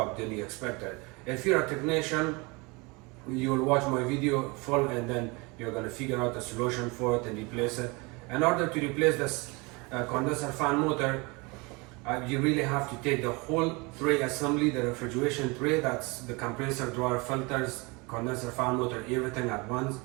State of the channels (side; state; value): left; quieter; 27.1 dB